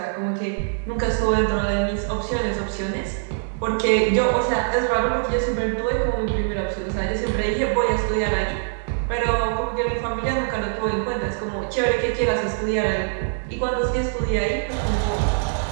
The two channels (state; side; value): silent; left; digital silence